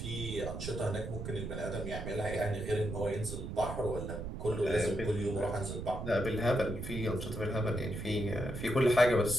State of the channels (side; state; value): right; noise; rumble, 6 dB below the sound